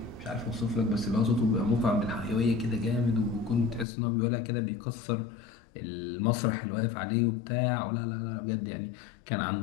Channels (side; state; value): right; drops out; at 3.9 s